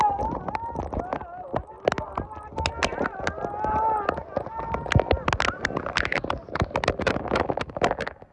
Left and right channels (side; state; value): both; identical; correlation 1.00